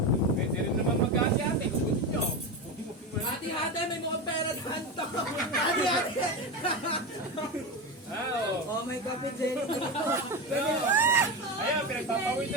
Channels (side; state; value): both; normal; correlation 0.18